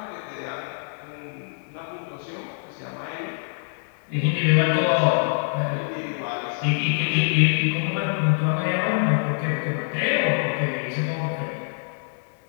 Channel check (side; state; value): right; silent; 61 dB below the other